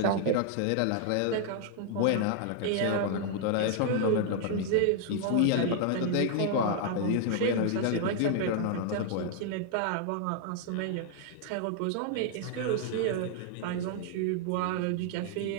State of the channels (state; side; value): different; both; correlation -0.01